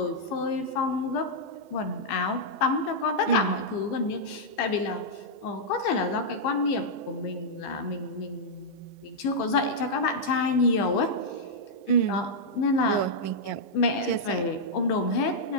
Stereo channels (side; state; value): right; late; 15 ms